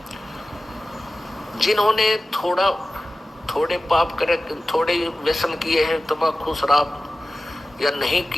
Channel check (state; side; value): normal; both; correlation 0.95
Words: जिन्होंने थोड़े पाप करे, थोड़े व्यसन किए हैं, तम्बाकू शराब या नहीं